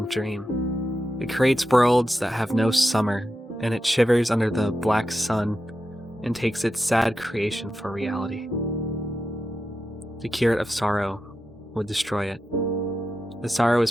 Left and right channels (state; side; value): normal; both; correlation 0.89